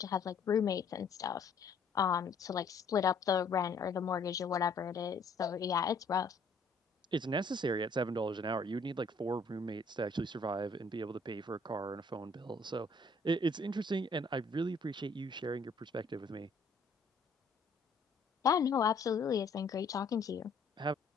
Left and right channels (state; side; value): quieter; right; 3.5 dB